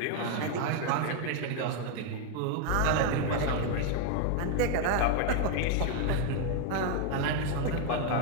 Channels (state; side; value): different; both; correlation 0.00